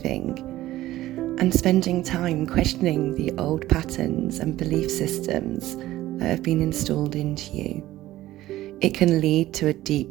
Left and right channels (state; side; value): quieter; left; 15.4 dB